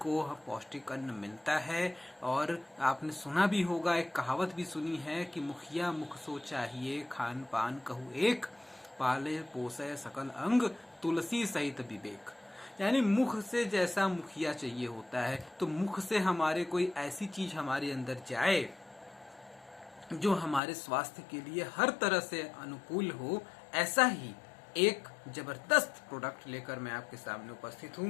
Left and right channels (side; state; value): right; drops out; at 20.6 s